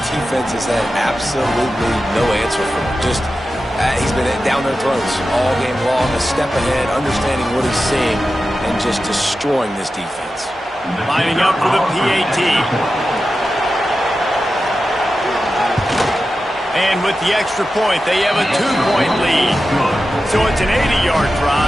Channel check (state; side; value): normal; both; correlation 0.92